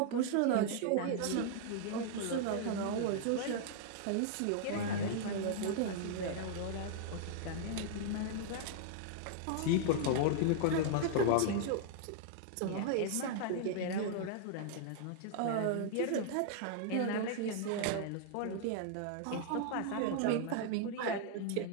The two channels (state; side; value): different; both; correlation -0.01